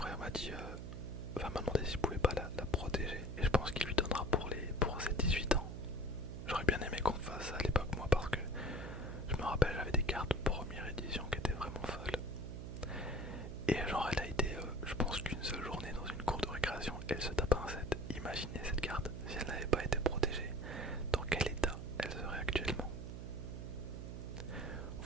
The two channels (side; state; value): right; noise; hum, 7 dB below the sound